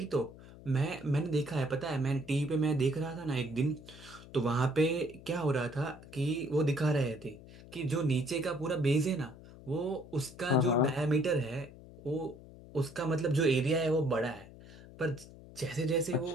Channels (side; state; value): left; noise; hum, 18 dB below the sound